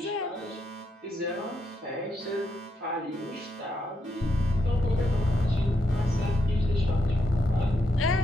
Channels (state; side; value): normal; both; correlation 0.80